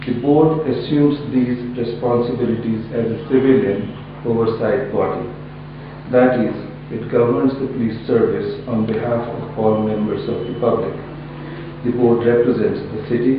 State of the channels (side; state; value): both; identical; correlation 1.00